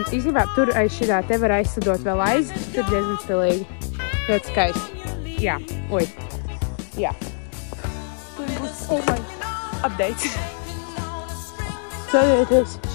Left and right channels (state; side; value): silent; right; digital silence